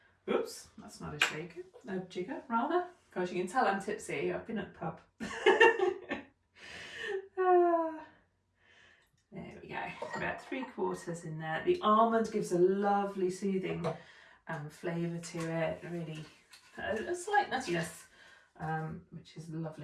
Oops, that's not a shaker, a jigger rather. Gosh, you can tell I'm tipsy. I've been at the pub. There we go. About 3/4 in there. The almond gives a lovely soothing flavour to it. Really, a slight nuttiness, which is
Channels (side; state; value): both; identical; correlation 1.00